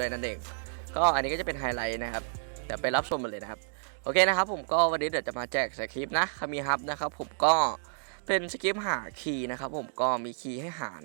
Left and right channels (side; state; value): left; silent; digital silence